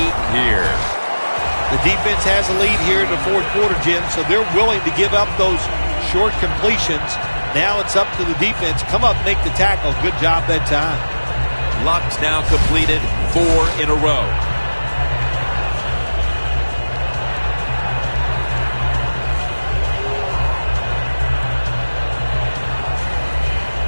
here. The defense has a lead here in the fourth quarter, Jim, so they're willing to give up those short completions. Now it's up to the defense. Come up, make the tackle. Good job that time. Luck's now completed 4 in a row.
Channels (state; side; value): inverted; both; correlation -1.00